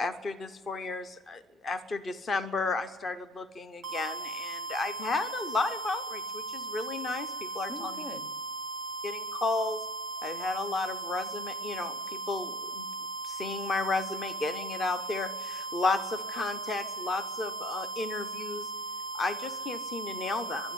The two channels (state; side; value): normal; both; correlation 0.48